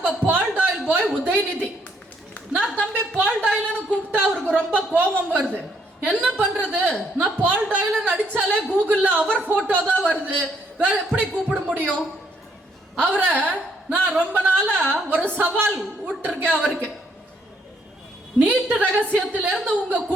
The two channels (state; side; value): normal; both; correlation 0.70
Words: பால் டாயில் பாய் உதயநிதி. நான் தம்பி பால் டாயில்னு கூப்பிட்டா அவருக்கு ரொம்ப கோபம் வருது. என்ன பண்றது? நான் பால் டாயில் அடிச்சாலே கூகுள்ல அவர் போட்டோ தான் வருது, வேற எப்படி கூப்பிட முடியும்? அவரை நான் ரொம்ப நாளா ஒரு சவால் விட்டுருக்கேன் அவருக்கு. நீட்டு ரகசியத்திலிருந்து உங்க